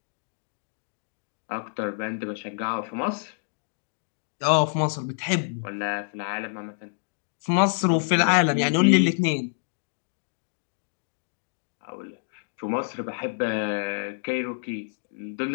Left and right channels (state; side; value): silent; right; digital silence